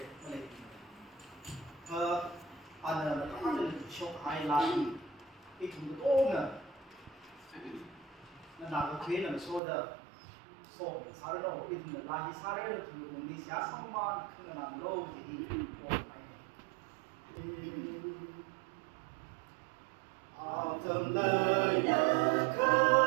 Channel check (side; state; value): left; drops out; at 9.6 s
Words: cái này anh là nó là shock hai la cái thùng to nè nó làm cái thế là số đó số sao đó cái thùng là cái sao đó thùng mình đi xả xong mà không là làm lâu thì Autumn lời nhớ